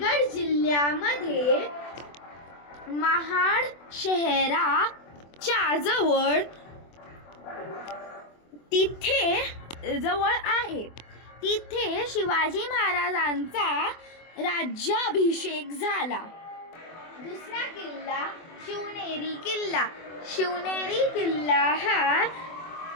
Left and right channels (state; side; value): late; right; 24 ms